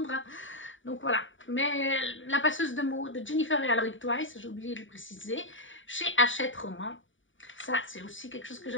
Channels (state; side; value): late; right; 0.56 ms